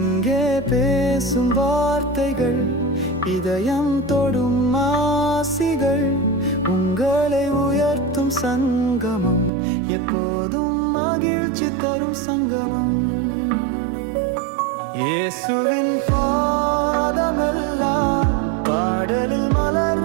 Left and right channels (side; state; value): left; drops out; at 9.5 s